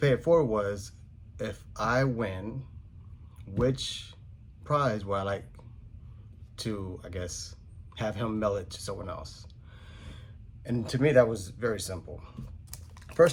it forward was, if I win, which prize would I like to, I guess, have him mail it to someone else? And to me, that was very simple.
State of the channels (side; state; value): both; identical; correlation 1.00